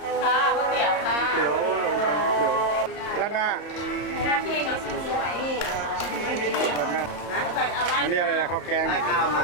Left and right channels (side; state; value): right; late; 34 ms